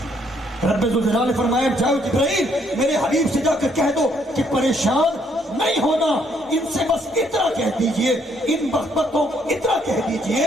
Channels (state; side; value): normal; both; correlation 0.69